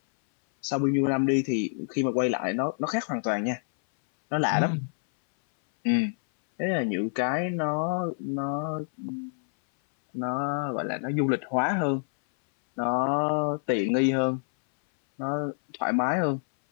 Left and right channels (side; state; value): right; silent; 60 dB below the other